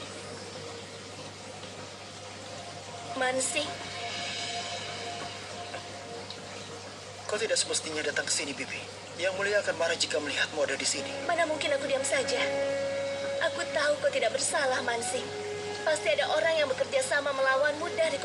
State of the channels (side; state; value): both; identical; correlation 1.00